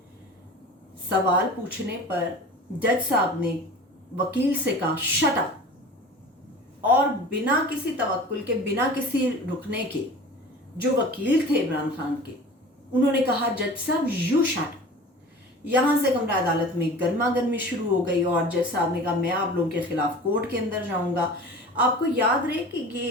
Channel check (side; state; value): both; normal; correlation 0.39